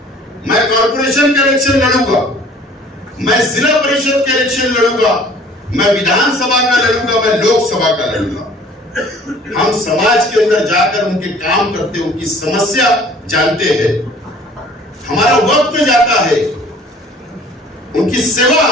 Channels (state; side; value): normal; both; correlation 0.51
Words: मैं कॉर्पोरेशन के इलेक्शन लड़ूंगा, मैं जिला परिषद के इलेक्शन लड़ूंगा, मैं विधानसभा का लड़ूंगा, मैं लोकसभा का लड़ूंगा। हम समाज के अंदर जाकर उनके काम करते, उनकी समस्या जानते हैं, हमारा वक्त जाता है, उनकी सेवा